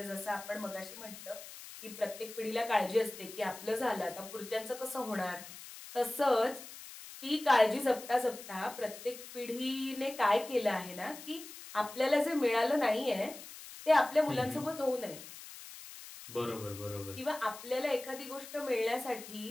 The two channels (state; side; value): noise; left; hiss, 14 dB below the sound